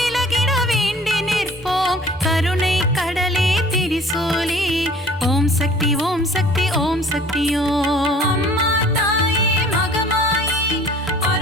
வேண்டி நிற்போம் கருணை கடலே திரிசூலி. ஓம் சக்தி ஓம் சக்தி ஓம் சக்தி ஓம். அம்மா தாயே மகமாயி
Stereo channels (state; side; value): normal; both; correlation 0.49